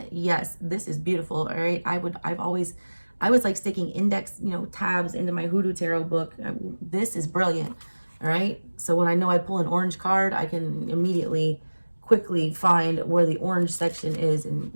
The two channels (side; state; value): both; inverted; correlation -1.00